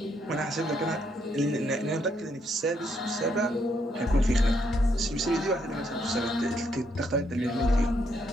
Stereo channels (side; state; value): both; normal; correlation 0.74